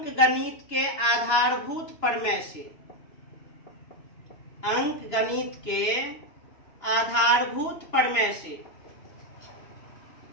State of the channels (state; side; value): late; right; 2.9 ms